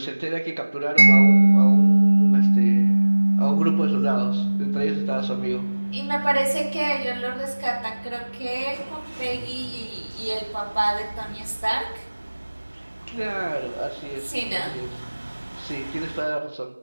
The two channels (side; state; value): both; inverted; correlation -1.00